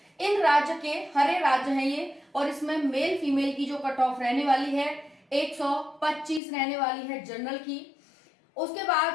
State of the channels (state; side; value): drops out; right; at 6.4 s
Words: इन राज्य के हरे राज्य हैं ये। और इसमें मेल फीमेल की जो कट ऑफ रहने वाली है 125 रहने वाली है जनरल की। उसके